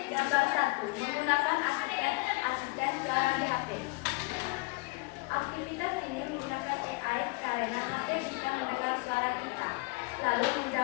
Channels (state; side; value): quieter; right; 26.5 dB